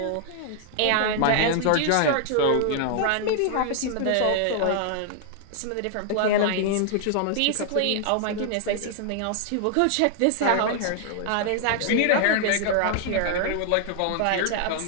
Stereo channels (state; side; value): different; both; correlation 0.00